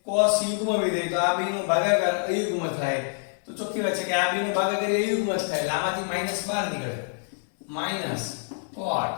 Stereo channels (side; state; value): right; silent; 61 dB below the other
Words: cos યુગ્મ વિધેય, તો આ બેનો ભાગાકાર અયુગ્મ થાય. તો ચોખ્ખી વાત છે કે આ બેનો ભાગાકાર અયુગ્મ જ થાય એટલે આમાંથી -12 નીકળે. -cot